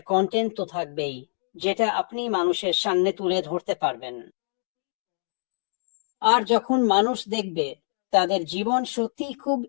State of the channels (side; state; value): right; silent; digital silence